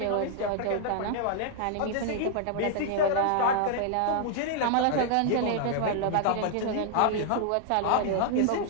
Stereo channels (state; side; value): different; both; correlation -0.01